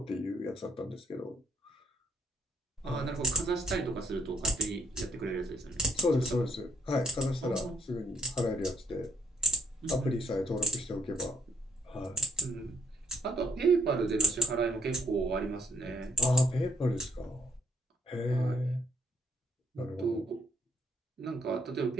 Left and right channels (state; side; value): normal; both; correlation 0.68